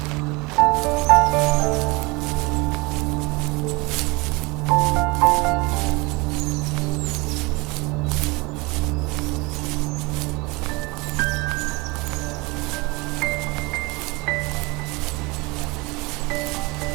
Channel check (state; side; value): quieter; left; 25.4 dB